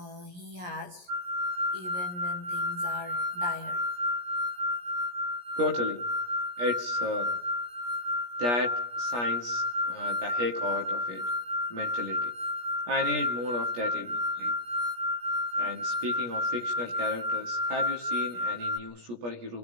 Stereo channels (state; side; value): late; left; 17 ms